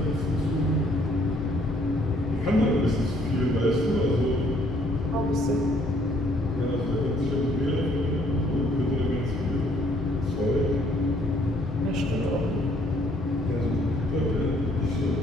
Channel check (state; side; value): normal; both; correlation 0.64